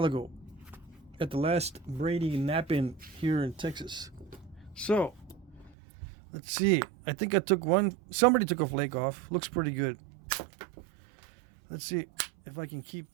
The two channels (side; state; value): left; drops out; at 5.8 s